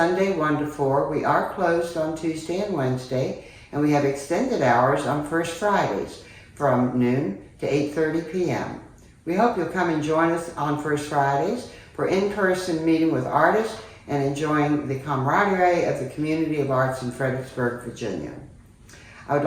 1 to 4. We are closed on Tuesday and Wednesday, and we have extended hours on First Fridays from noon to 8:30 p.m. We hope you'll come and join us on First Fridays for in-person meeting with artists and enjoying the camaraderie of the community of arts in Fredericksburg, Virginia. I would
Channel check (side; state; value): both; identical; correlation 1.00